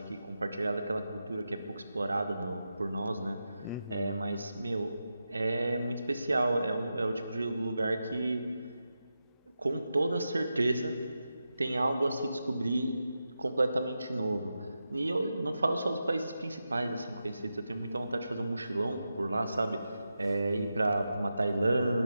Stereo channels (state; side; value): inverted; both; correlation -0.89